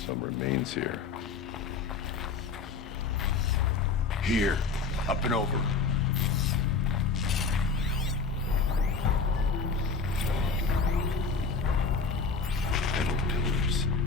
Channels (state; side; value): quieter; right; 4.6 dB